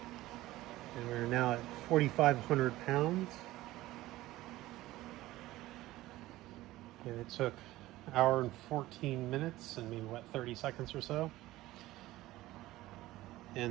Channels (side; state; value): left; quieter; 16.9 dB